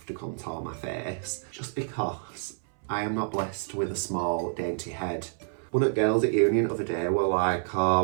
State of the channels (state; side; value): silent; left; 59 dB below the other